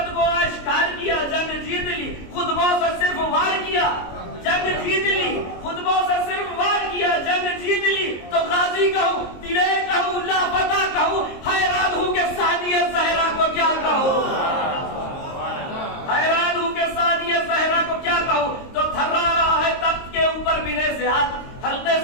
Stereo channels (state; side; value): late; right; 22 ms